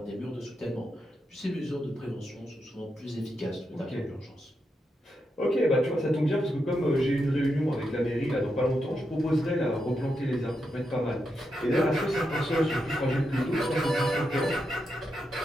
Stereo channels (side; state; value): both; normal; correlation 0.85